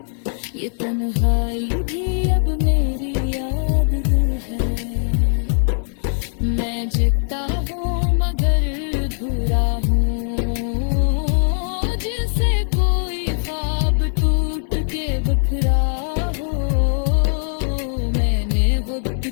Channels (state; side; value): silent; right; digital silence